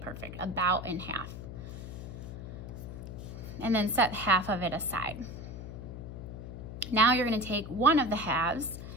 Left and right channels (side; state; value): left; noise; hum, 9 dB below the sound